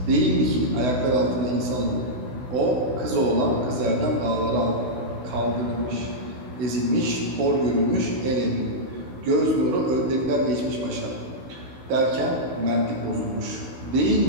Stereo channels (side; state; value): left; late; 16 ms